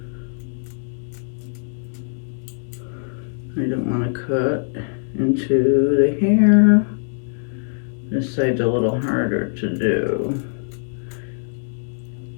I don't want to cut into the hair. This side's a little harder to do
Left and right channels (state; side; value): silent; right; digital silence